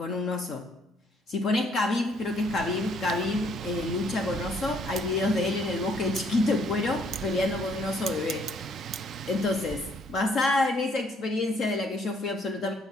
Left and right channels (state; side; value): normal; both; correlation 0.65